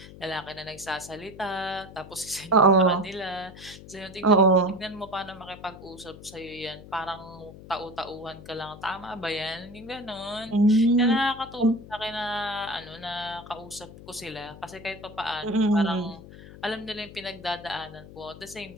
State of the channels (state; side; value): noise; left; hum, 17 dB below the sound